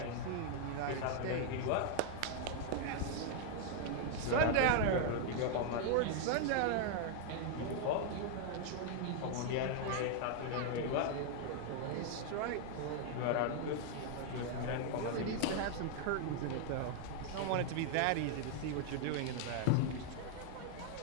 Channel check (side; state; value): both; different; correlation 0.00